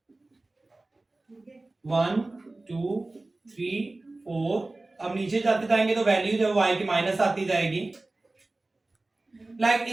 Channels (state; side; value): quieter; left; 3.0 dB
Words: One two three four, अब नीचे जाते जाएंगे तो वैल्यू जो y की माइनस आती जाएगी। लाइक